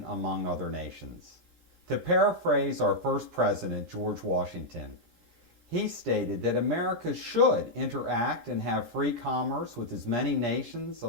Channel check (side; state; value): left; late; 13 ms